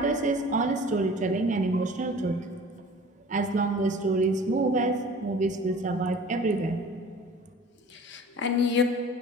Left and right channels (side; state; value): both; normal; correlation 0.44